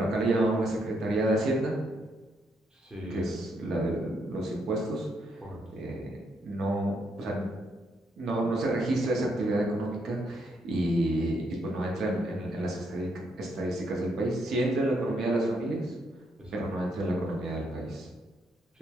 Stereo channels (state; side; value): normal; both; correlation 0.76